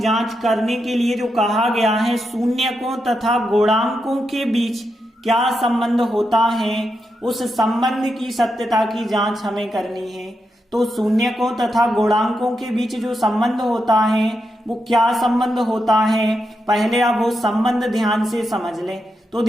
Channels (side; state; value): both; normal; correlation 0.85